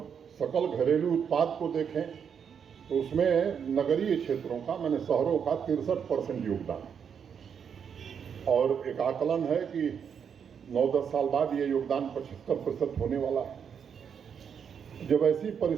सकल घरेलू उत्पाद को देखें तो उसमें नगरीय क्षेत्रों का, मैंने शहरों का 63% योगदान है और एक आकलन है कि 9-10 साल बाद ये योगदान 75% होने वाला है। जब ऐसी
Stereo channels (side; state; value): left; quieter; 7.3 dB